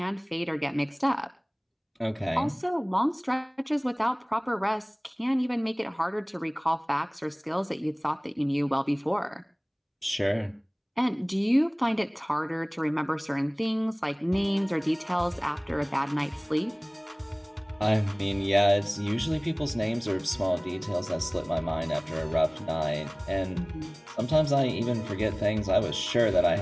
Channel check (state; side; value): identical; both; correlation 1.00